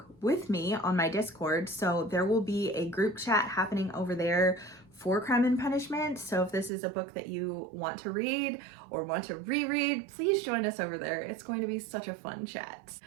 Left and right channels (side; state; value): left; drops out; at 6.7 s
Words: with me on my Discord, so there will be a group chat happening over there for Crime and Punishment. So if this is a book that you want to read or want to reread, please join us over there. It's going to be such a fun chat.